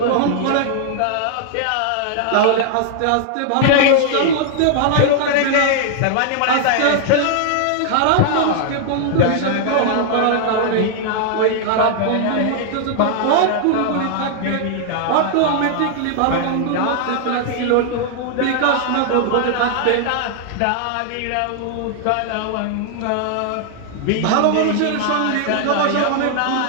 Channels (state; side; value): different; both; correlation -0.01